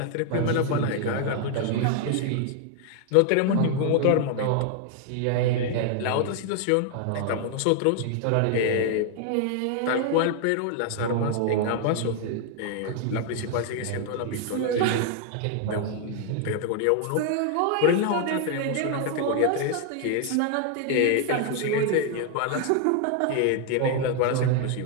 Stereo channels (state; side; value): different; both; correlation 0.00